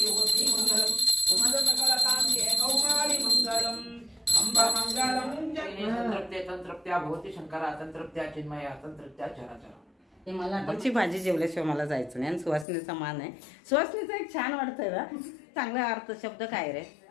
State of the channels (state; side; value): drops out; right; at 12.7 s